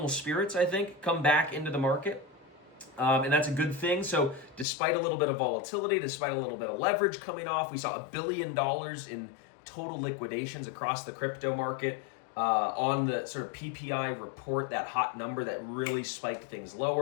spirits, I think, come back into the market. And that's a good thing. So despite a little bit of volatility, despite a little bit of leverage coming off, we saw $1 billion in total liquidations across the crypto market on the sort of PPI report, that hot number that really spiked things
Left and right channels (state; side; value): drops out; right; at 4.7 s